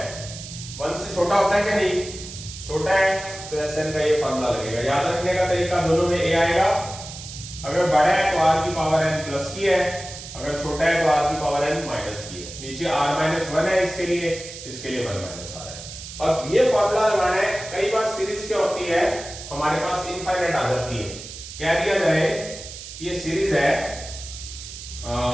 1 से छोटा होता है क्या, नहीं छोटा है, तो SN का ये फॉर्मूला लगेगा। याद रखने का तरीका, दोनों में A आएगा, अगर बड़ा है तो R की पावर n प्लस की है, अगर छोटा है तो R की पावर n माइनस की है। नीचे R-1 है इसके लिए 1 माइनस R है। अब ये फॉर्मूला लगाना है। कई बार सीरीज क्या होती है, हमारे पास इनफाइनाइट आ जाती है। कह दिया जाए ये सीरीज है,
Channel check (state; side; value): noise; right; hiss, 12 dB below the sound